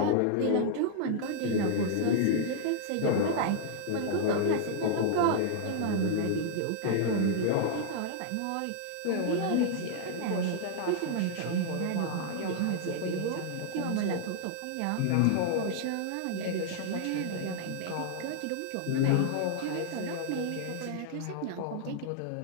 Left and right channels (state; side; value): different; both; correlation -0.01